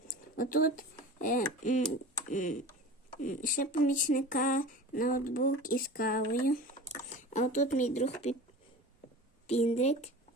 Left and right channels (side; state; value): both; normal; correlation 0.36